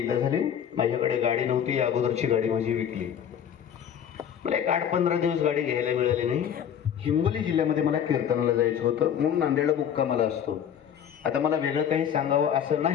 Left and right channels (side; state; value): right; quieter; 8.9 dB